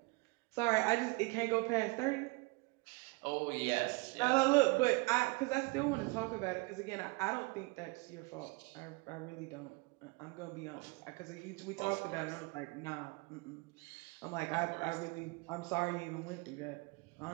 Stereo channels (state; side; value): quieter; left; 27.1 dB